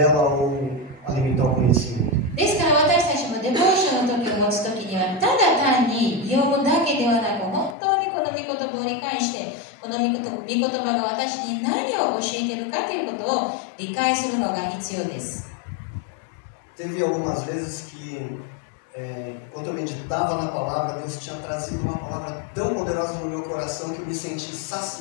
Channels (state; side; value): drops out; right; at 7.8 s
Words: ou alimentar o conhecimento. ですから私たちもデボーションの時を持つ時には、ただ単に読むだけではなく、本当にこの御言葉を理解して、この御言葉が私に何を教えているかということを理解するのが必要です。 Teve algumas vezes que, quando eu meditava na palavra, Deus tinha trazido uma palavra tão poderosa no meu coração que eu me senti